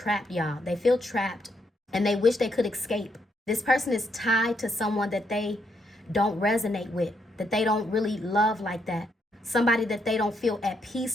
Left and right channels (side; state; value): both; normal; correlation 0.76